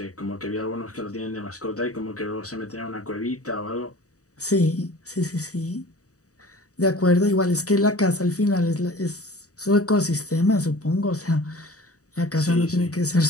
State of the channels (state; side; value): late; right; 0.66 ms